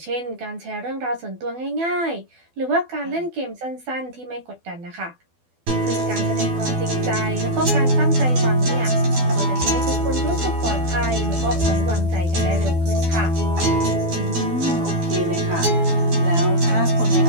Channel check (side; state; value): left; late; 12 ms